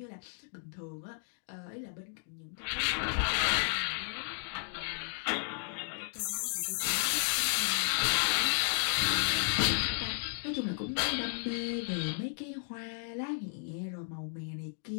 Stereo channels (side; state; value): right; silent; digital silence